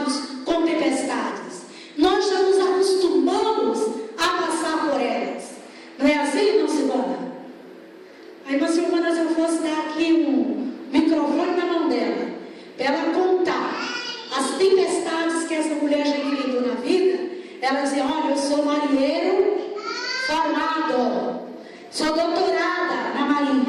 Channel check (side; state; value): both; identical; correlation 1.00